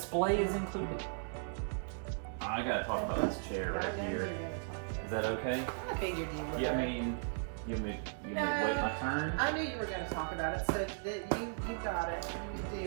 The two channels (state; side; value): silent; left; digital silence